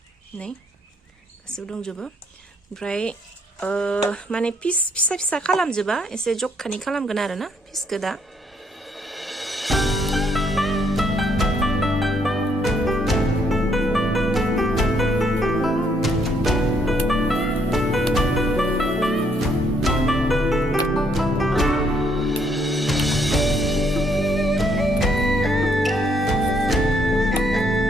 नै गासिबो दंजोबो ओमफ्राय माने पिस फिसा फिसा खालामजोबा एसे जखानि खालामगोन आरोना पिसखौ दा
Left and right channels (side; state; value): both; normal; correlation 0.70